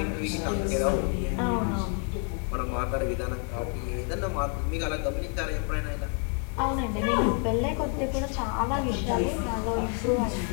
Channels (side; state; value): right; quieter; 39.9 dB